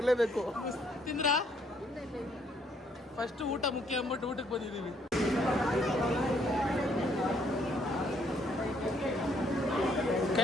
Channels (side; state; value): both; normal; correlation 0.68